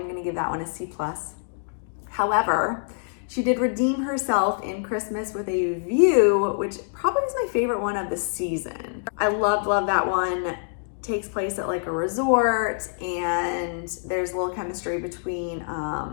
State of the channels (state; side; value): silent; right; digital silence